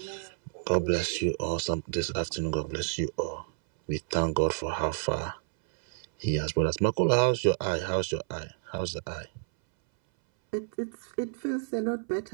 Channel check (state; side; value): silent; left; 58 dB below the other